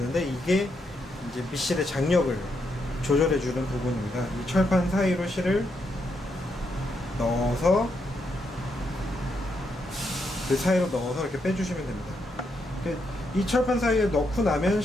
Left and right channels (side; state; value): both; normal; correlation 0.80